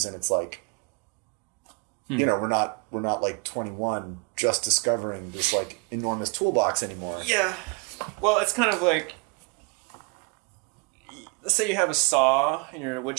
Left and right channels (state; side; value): quieter; left; 32.7 dB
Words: and it's like, we're not like 21 just discovering this like enormous toolbox anymore. Yeah. Well, it's kind of like, let's say you have a saw and you're in a wood